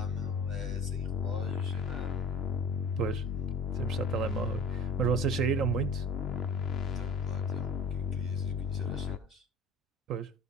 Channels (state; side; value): normal; both; correlation 0.41